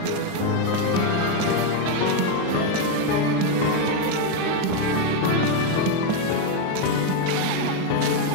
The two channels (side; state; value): both; different; correlation 0.02